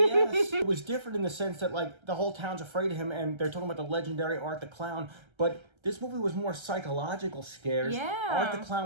It was different in the sense that like the whole town's afraid of him, and they're talking about the legendary Art the Clown, but this movie was more psychological scares. Yeah. Art the Clown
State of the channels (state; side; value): late; left; 1.3 ms